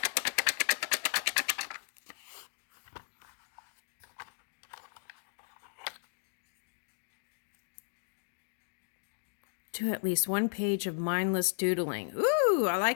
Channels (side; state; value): right; silent; digital silence